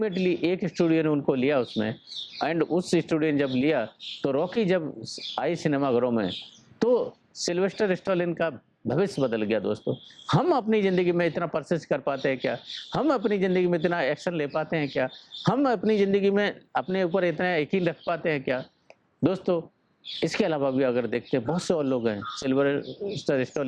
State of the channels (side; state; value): both; identical; correlation 1.00